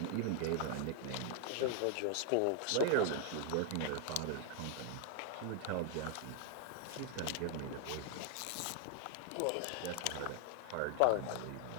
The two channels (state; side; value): different; both; correlation 0.00